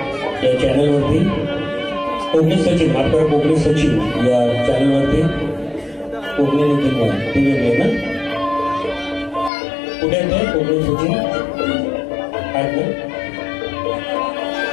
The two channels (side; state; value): right; drops out; at 9.5 s